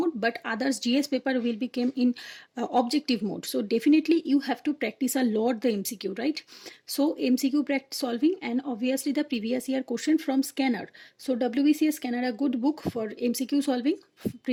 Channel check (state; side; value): identical; both; correlation 1.00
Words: but others GS paper will become in objective mode. So definitely you have to practice a lot the MCQ, right? So MCQ practice solving, and obviously the previous year question from scanner. So WBCS scanner a good book for MCQ solving,